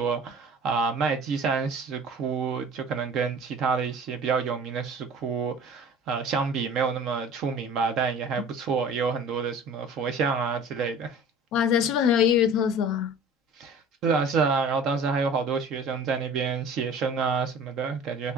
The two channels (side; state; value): both; normal; correlation 0.43